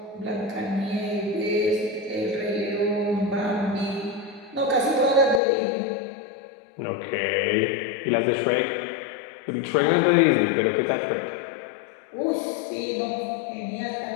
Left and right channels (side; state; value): right; drops out; at 5.4 s